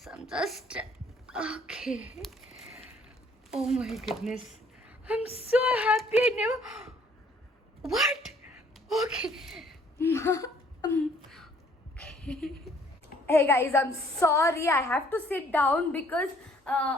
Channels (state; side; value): normal; both; correlation 0.61